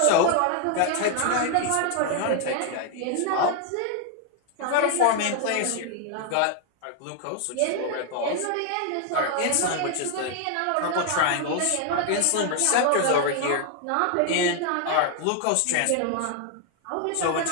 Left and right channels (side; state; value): both; different; correlation 0.00